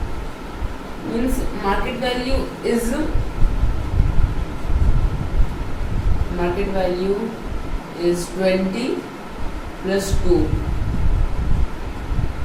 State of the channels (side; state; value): both; identical; correlation 1.00